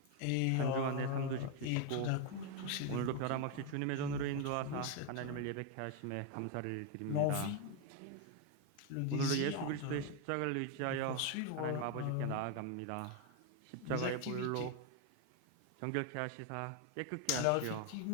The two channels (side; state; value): both; different; correlation 0.01